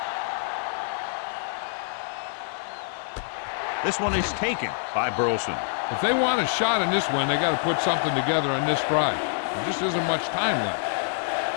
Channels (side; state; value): right; silent; 55 dB below the other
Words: This one is taken by Burleson. If they want a shot in this one, they got to put something together on this drive. There just isn't much time left.